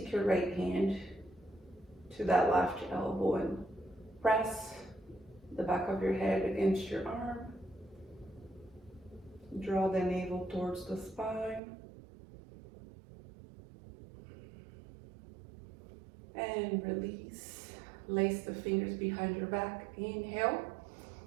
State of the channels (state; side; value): drops out; left; at 11.6 s